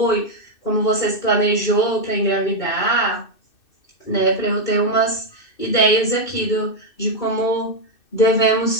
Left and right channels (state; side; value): late; right; 2.6 ms